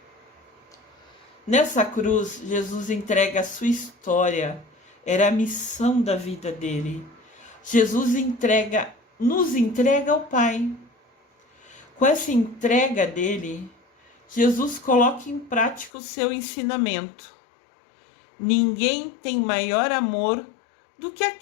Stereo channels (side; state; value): right; drops out; at 15.9 s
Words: Nessa cruz, Jesus entrega a sua história, era a missão da vida dele. Jesus nos entrega ao Pai. Com essa entrega dele, Jesus coloca em prática o seu ensinamento. Ninguém tem maior amor do que